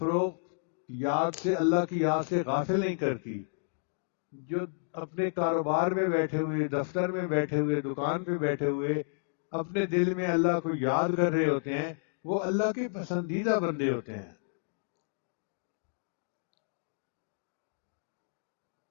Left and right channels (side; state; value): right; silent; digital silence